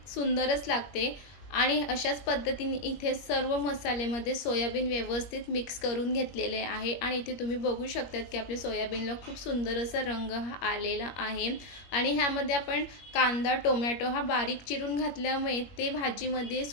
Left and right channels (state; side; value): late; right; 21 ms